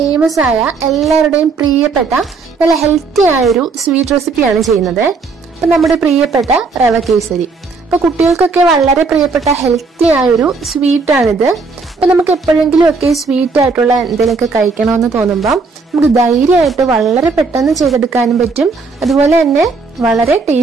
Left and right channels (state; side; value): quieter; left; 4.4 dB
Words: ആയ എല്ലാവരുടെയും പ്രിയപ്പെട്ട നല്ല ഹെൽത്തി ആയ ഒരു സ്വീറ്റ് റെസിപ്പിയാണ് ചെയ്യുന്നത്. അപ്പോൾ നമ്മുടെ പ്രിയപ്പെട്ട റവ കേസരി. അപ്പോൾ കുട്ടികൾക്കൊക്കെ വളരെ പ്രിയപ്പെട്ട ഹെൽത്തി ആയ ഒരു സ്വീറ്റ് ആണിത്. അപ്പോൾ നമുക്ക് എപ്പോഴെങ്കിലും ഒക്കെ സ്വീറ്റ് ആയിട്ടുള്ള എന്തെങ്കിലുമൊക്കെ കഴിക്കണമെന്ന് തോന്നുമ്പോൾ നമുക്ക് ധൈര്യമായിട്ട് വളരെ പെട്ടെന്ന് ചെയ്തെടുക്കാനും പറ്റും. അതുപോലെ തന്നെ വളരെ